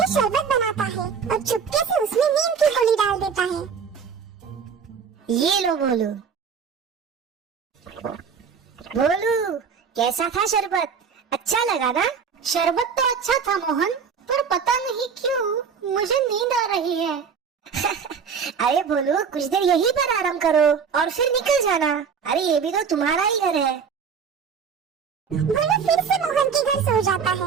शरबत बनाता है और चुपके से उसमें नीम की गोली डाल देता है। ये लो भोलू। भोलू, कैसा था शरबत? अच्छा लगा ना? शरबत तो अच्छा था मोहन, पर पता नहीं क्यों मुझे नींद आ रही है। अरे भोलू, कुछ देर यहीं पर आराम करो और फिर निकल जाना। अरे ये भी तो तुम्हारा ही घर है। भोलू फिर से मोहन के घर सो जाता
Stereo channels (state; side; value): quieter; left; 6.4 dB